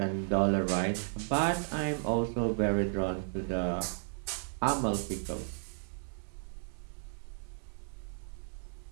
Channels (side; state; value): left; silent; 55 dB below the other